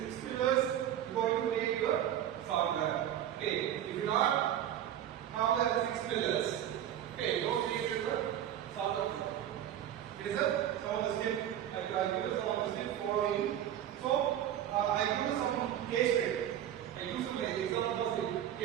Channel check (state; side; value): quieter; left; 11.0 dB